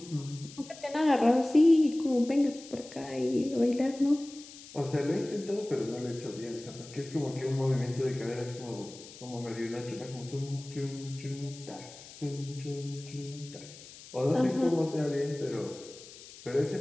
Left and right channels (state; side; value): noise; left; hiss, 17 dB below the sound